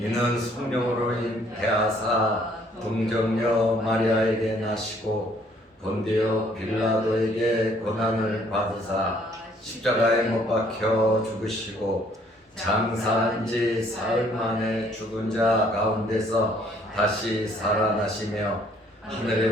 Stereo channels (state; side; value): normal; both; correlation 0.62